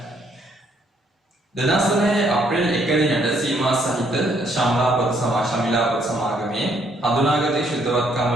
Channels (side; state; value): both; normal; correlation 0.68